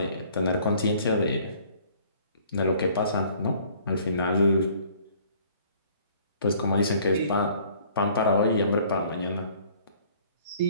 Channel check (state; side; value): inverted; both; correlation -0.56